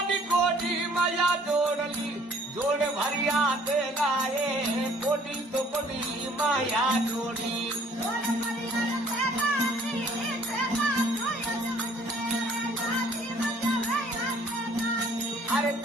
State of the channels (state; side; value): normal; both; correlation 0.57